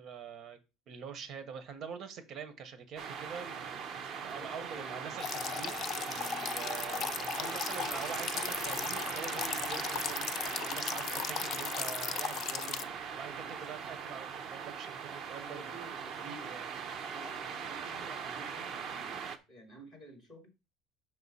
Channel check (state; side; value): normal; both; correlation 0.48